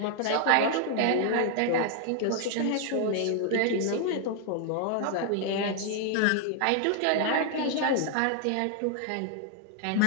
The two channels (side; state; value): both; different; correlation 0.00